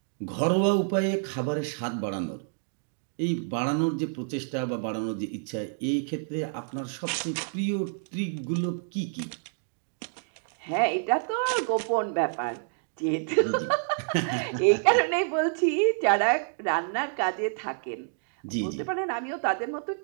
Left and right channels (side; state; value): left; silent; digital silence